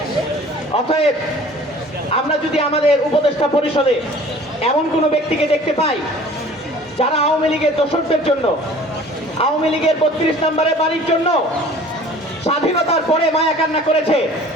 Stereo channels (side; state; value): both; normal; correlation 0.48